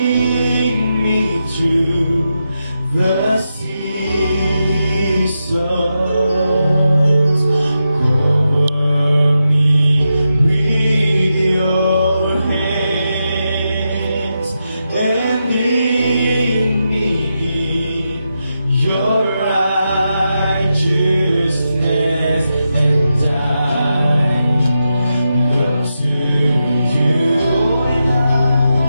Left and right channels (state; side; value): inverted; both; correlation -0.87